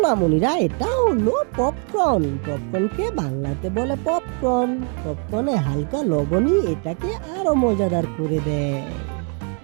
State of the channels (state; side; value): quieter; left; 36.9 dB